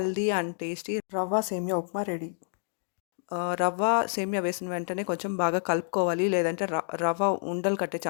అండ్ టేస్టీ రవ్వ సేమియా ఉప్మా రెడీ. రవ్వ, సేమియా వేసిన వెంటనే కొంచెం బాగా కలుపుకోవాలి. లేదంటే రవ్వ ఉండలు కట్టే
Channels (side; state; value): right; silent; digital silence